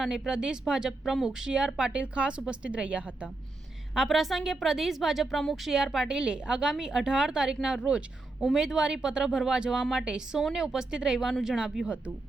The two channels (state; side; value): quieter; left; 3.1 dB